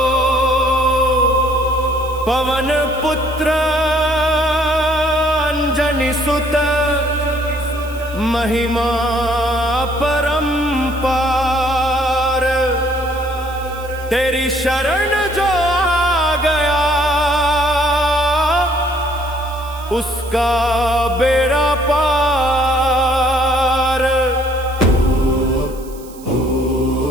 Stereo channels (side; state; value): right; noise; hiss, 21 dB below the sound